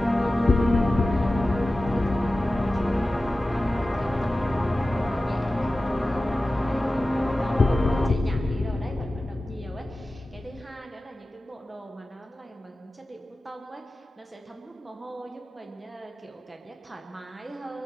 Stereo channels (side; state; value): both; normal; correlation 0.95